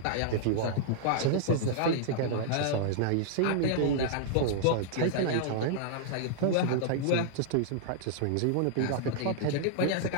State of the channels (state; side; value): different; both; correlation -0.01